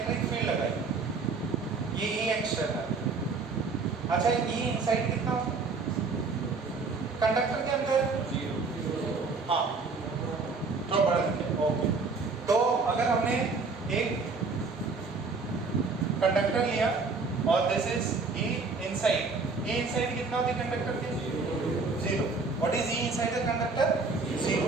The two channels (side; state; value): left; quieter; 4.3 dB